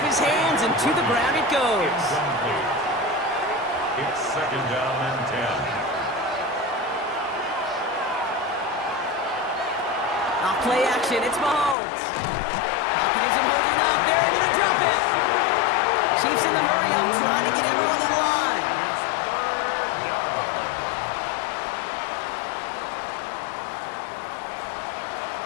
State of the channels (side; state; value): right; drops out; at 11.8 s